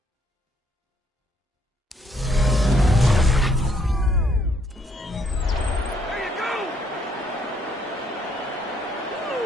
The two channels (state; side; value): normal; both; correlation 0.69